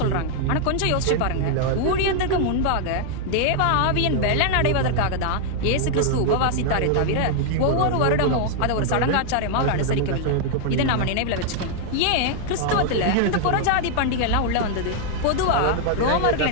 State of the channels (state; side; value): different; both; correlation 0.00